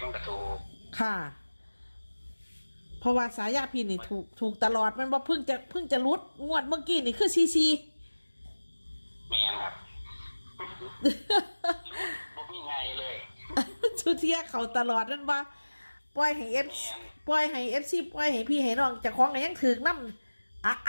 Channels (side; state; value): both; inverted; correlation -1.00